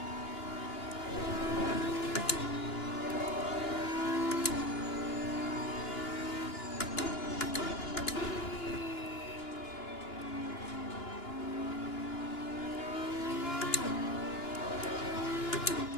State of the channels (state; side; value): late; right; 2.9 ms